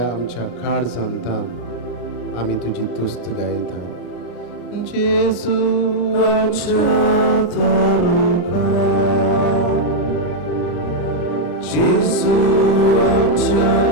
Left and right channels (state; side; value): late; right; 33 ms